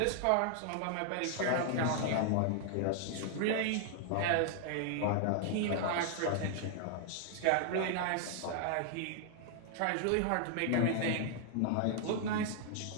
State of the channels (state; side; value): different; both; correlation 0.00